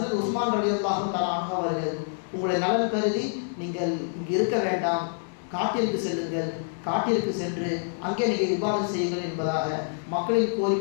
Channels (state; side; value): silent; right; digital silence